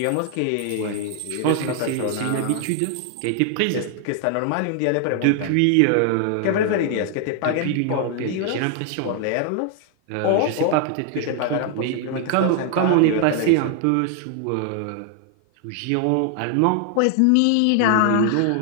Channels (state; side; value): different; both; correlation 0.00